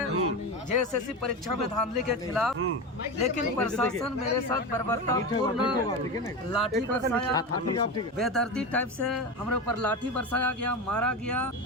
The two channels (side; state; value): both; normal; correlation 0.21